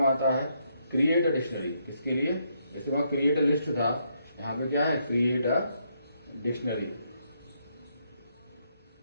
आता है? Create a dictionary. किसके लिए? जैसे वहां क्रिएट अ लिस्ट था, यहाँ पे क्या है? Create a dictionary.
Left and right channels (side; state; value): both; inverted; correlation -0.76